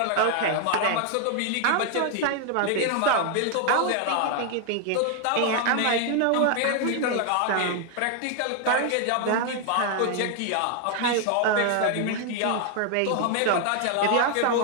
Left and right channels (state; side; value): different; both; correlation 0.00